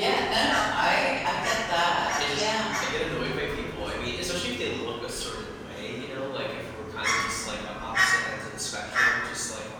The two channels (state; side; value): identical; both; correlation 1.00